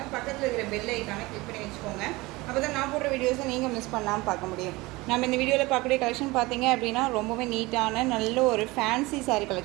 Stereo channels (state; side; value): quieter; left; 21.9 dB